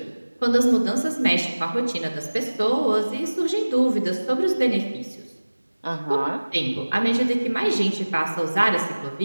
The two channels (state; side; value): inverted; both; correlation -1.00